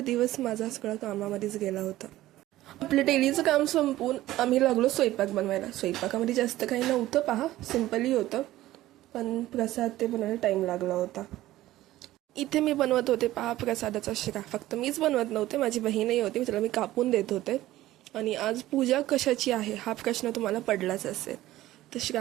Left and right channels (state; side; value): quieter; left; 15.6 dB